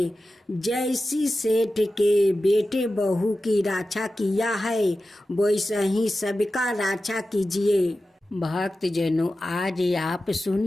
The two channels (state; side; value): normal; both; correlation 0.93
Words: जैसी सेठ के बेटे बहू की रक्षा किया है वैसा ही सबका रक्षा कीजिए। भक्त जनों, आज आप